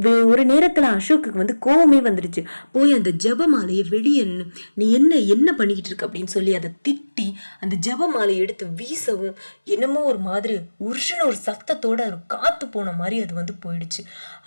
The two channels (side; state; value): both; inverted; correlation -1.00